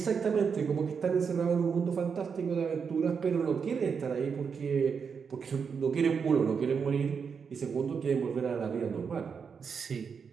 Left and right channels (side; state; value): left; quieter; 6.1 dB